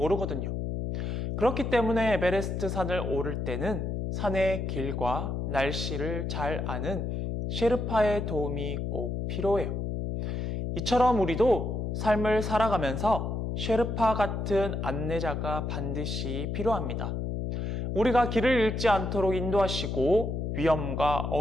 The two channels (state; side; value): noise; left; hum, 2 dB below the sound